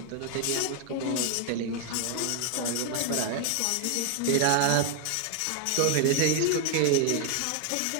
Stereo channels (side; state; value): both; different; correlation 0.01